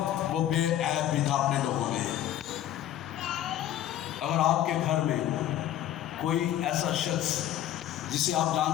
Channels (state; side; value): quieter; right; 11.9 dB